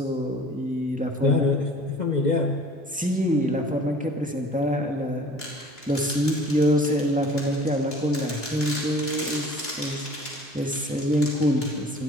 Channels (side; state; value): both; normal; correlation 0.48